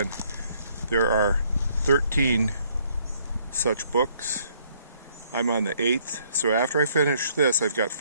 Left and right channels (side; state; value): both; inverted; correlation -0.66